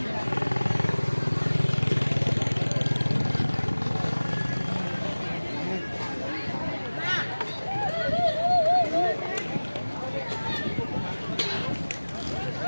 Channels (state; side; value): inverted; both; correlation -1.00